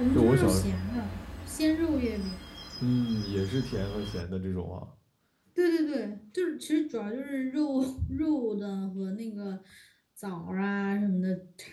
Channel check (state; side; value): identical; both; correlation 1.00